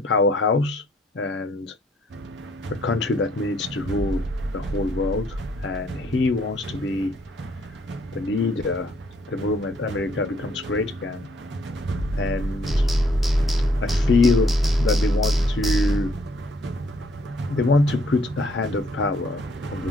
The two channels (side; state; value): both; normal; correlation 0.66